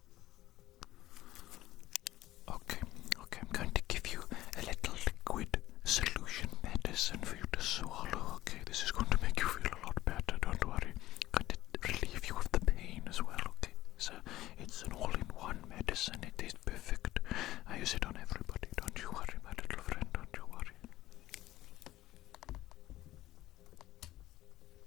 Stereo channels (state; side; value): quieter; right; 15.5 dB